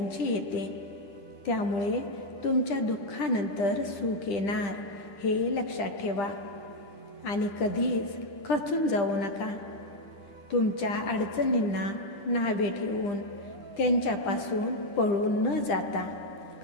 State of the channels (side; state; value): right; late; 10 ms